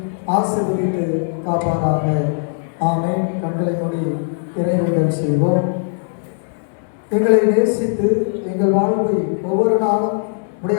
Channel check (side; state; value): right; silent; 66 dB below the other